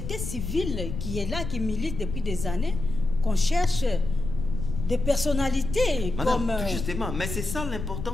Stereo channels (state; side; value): noise; left; rumble, 6 dB below the sound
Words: civile qui est là, qui milite depuis des années, qu'on cherche des personnalités. Madame, comme... Justement, mais c'est ça